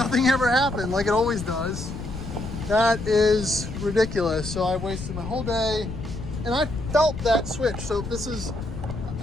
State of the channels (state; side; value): noise; left; rumble, 8 dB below the sound